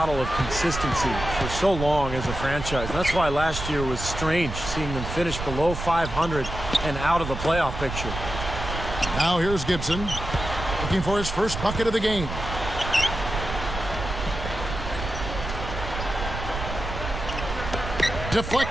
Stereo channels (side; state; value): right; noise; rumble, 6 dB below the sound